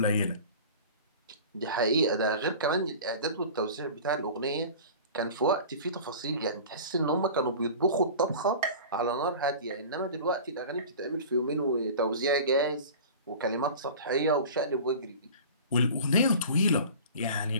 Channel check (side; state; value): both; inverted; correlation -0.38